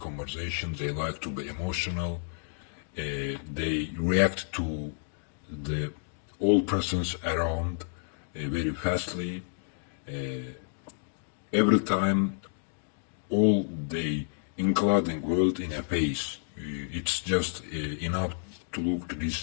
They like to be emotional. They react to the all persons around very fastly. Every time, all the including world in a face. It's just enough to look to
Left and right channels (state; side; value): silent; right; digital silence